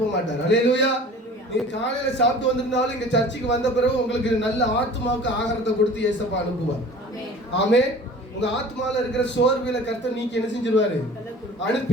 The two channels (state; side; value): normal; both; correlation 0.44